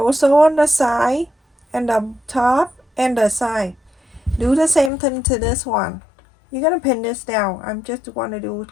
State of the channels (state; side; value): drops out; right; at 4.9 s